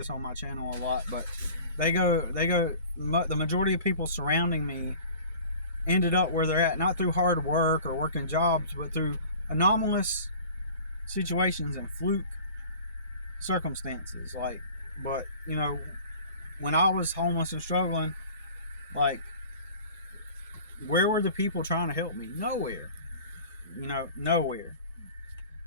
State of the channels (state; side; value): inverted; both; correlation -0.44